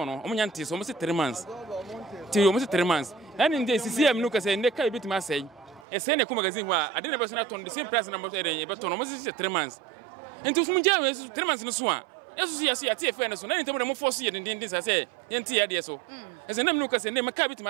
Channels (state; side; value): drops out; left; at 5.9 s